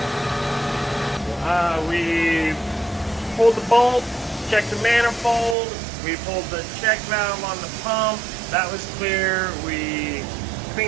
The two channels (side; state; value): left; drops out; at 5.6 s